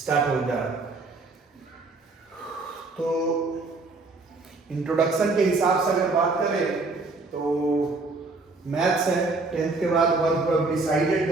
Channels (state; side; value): quieter; left; 3.6 dB